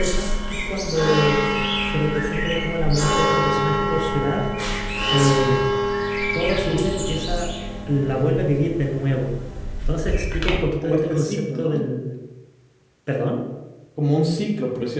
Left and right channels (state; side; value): identical; both; correlation 1.00